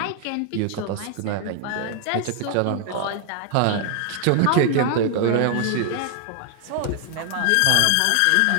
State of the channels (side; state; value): both; different; correlation 0.00